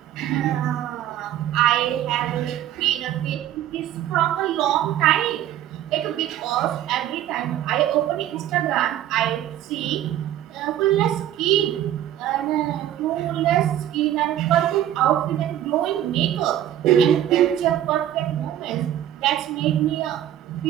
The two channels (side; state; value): left; quieter; 11.8 dB